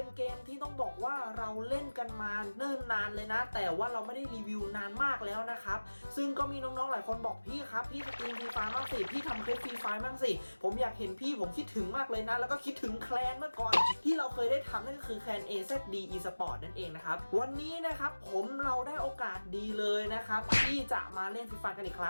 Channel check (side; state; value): both; inverted; correlation -1.00